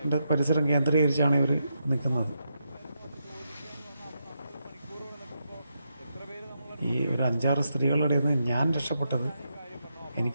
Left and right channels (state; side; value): inverted; both; correlation -0.83